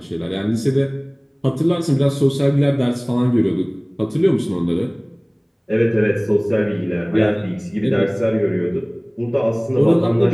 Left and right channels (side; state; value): both; identical; correlation 1.00